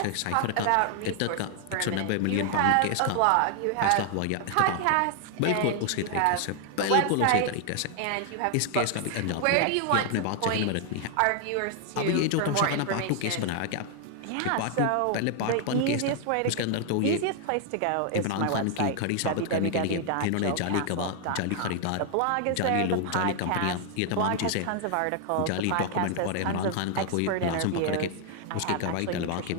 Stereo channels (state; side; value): different; both; correlation 0.00